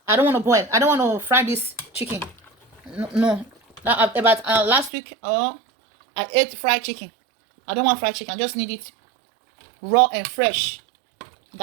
I don't want to boil. I don't want to fry this chicken. No. About last week, I ate fried chicken. I don't want fried chicken. I just need it raw and fresh,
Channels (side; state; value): left; drops out; at 4.9 s